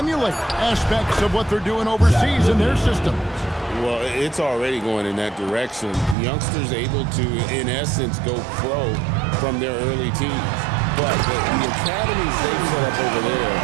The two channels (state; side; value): drops out; left; at 6.2 s